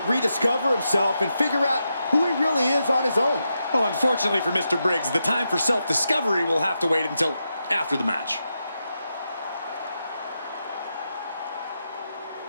rediscover himself and figure out who he really is on his own. Well, unfortunately for Mr. Briggs, the time for self-discovery will have to wait until after the match.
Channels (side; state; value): both; inverted; correlation -0.86